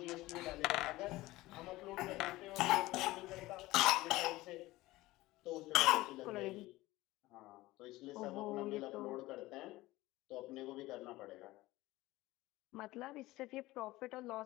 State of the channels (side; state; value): right; quieter; 18.5 dB